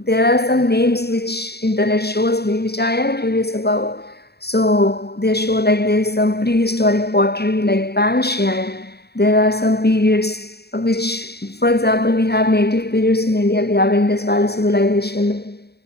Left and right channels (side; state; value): right; late; 0.47 ms